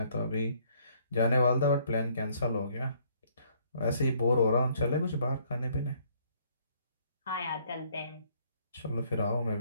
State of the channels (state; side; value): inverted; both; correlation -0.64